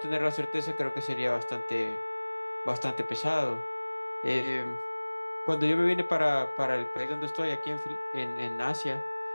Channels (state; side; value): inverted; both; correlation -1.00